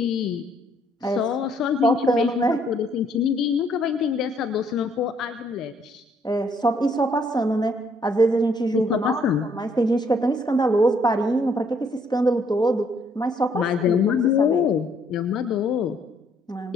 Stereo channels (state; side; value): normal; both; correlation 0.67